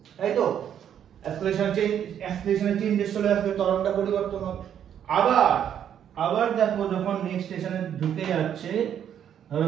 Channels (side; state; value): left; quieter; 9.4 dB